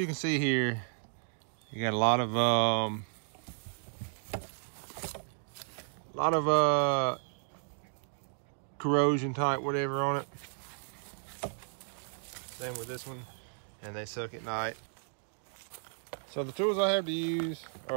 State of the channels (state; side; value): silent; left; digital silence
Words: can see here, you got a lot of corrosion type whatever on it. Same with this one, and they suck at night. So the tools I have to use